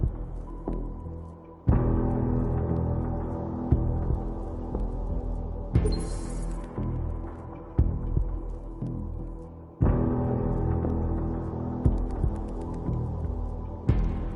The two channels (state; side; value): identical; both; correlation 1.00